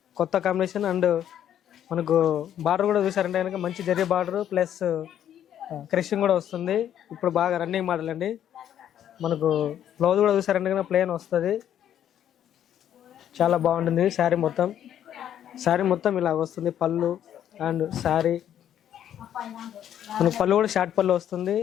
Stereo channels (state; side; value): quieter; right; 10.3 dB